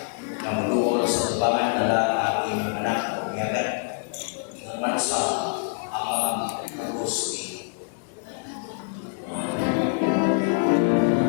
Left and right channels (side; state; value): right; silent; 60 dB below the other